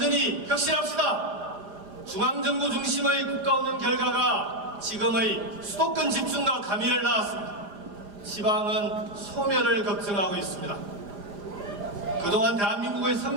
혁신합시다. 중앙정부 중심의 국가운영 결과가 지금의 수도권 집중과 가미를 낳았습니다. 지방은 소멸을 걱정하고 있습니다. 그동안 대한민국의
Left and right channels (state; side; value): late; left; 4.9 ms